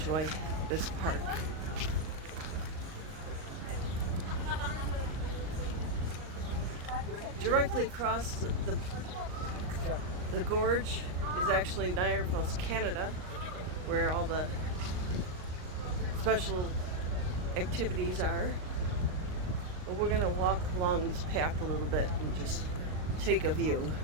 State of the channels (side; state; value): left; late; 38 ms